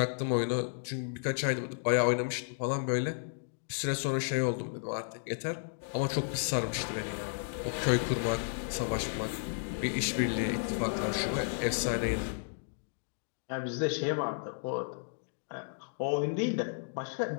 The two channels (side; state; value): right; silent; digital silence